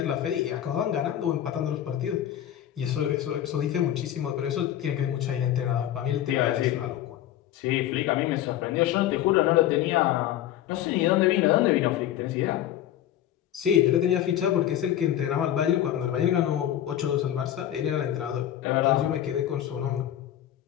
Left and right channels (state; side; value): quieter; right; 11.8 dB